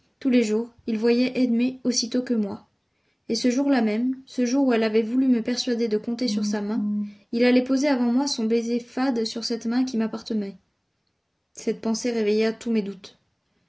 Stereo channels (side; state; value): both; identical; correlation 1.00